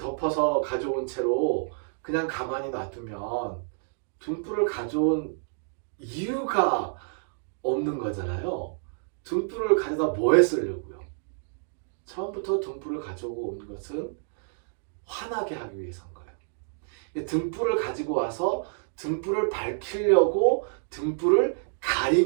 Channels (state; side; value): silent; left; digital silence